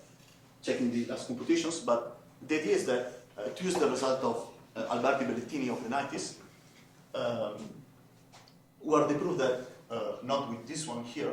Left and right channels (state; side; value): identical; both; correlation 1.00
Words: checking the last computations, but the idea is that to use the result of Alberti Bellettini of the 90s, where they prove that not with this one here,